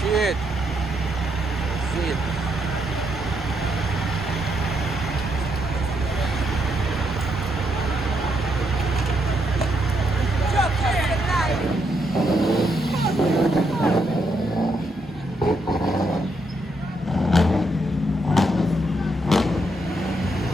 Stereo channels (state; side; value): normal; both; correlation 0.77